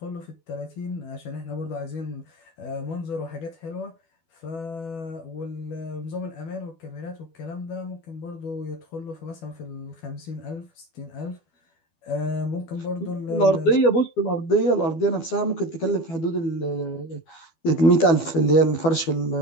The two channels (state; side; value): late; right; 12 ms